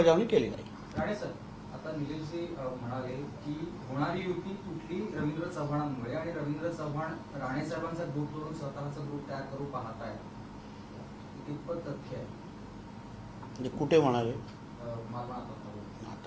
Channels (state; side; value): identical; both; correlation 1.00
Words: केली जाईल. राणे सर, आता निलेशजी म्हणाले की होणारी युती कुठली रवींद्र चव्हाणांमुळे आणि रवींद्र चव्हाण राणे साहेबांचा ग्रुप सोडून स्वतःचा ग्रुप तयार करू पाहत आहे, कितपत तथ्य आहे? म्हणजे कुठे म्हणाले? मला आता